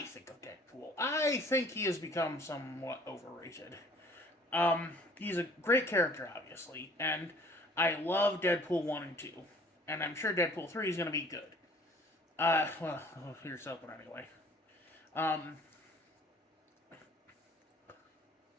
think of Deadpool? I think he has become somewhat overrated. He's a great character, obviously, and I love Deadpool 1 and 2. And I'm sure Deadpool 3 is going to be good. Here's something anyway.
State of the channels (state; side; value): normal; both; correlation 0.53